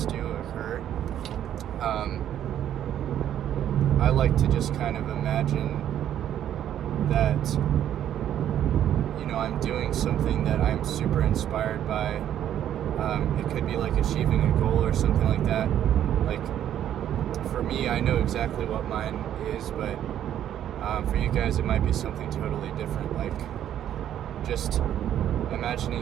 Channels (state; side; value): quieter; left; 10.7 dB